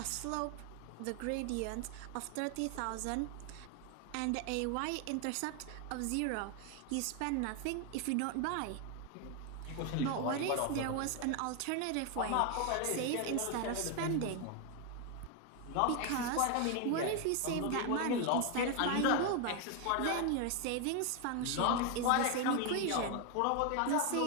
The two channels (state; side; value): different; both; correlation 0.01